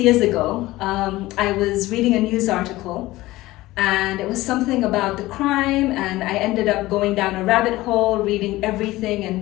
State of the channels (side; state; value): right; quieter; 18.1 dB